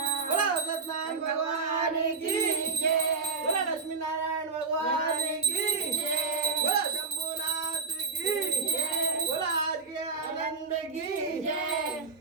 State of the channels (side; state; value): left; quieter; 4.5 dB